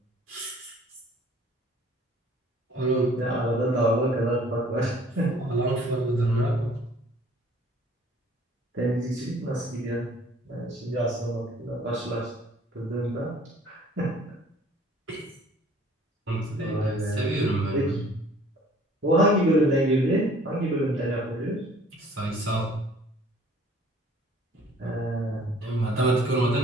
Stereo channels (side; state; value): both; normal; correlation 0.54